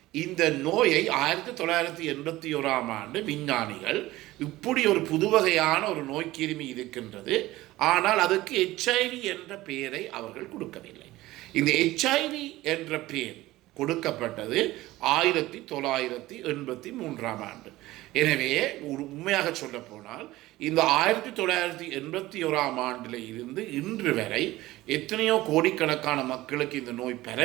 இந்த நோயை 1981 விஞ்ஞானிகள் இப்படி ஒரு புதுவகையான ஒரு நோய் கிருமி இருக்கின்றது, ஆனால் அதுக்கு HIV என்ற பெயரை அவர்கள் கொடுக்கவில்லை. இந்த HIV என்ற பெயர் கொடுக்கப்பட்டது 1983. எனவே உண்மையாக சொல்ல போனால் இந்த 1981 இருந்து இன்று வரை எத்தனையோ கோடிக்கணக்கான மக்களுக்கு இந்த நோய்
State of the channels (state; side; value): quieter; left; 17.5 dB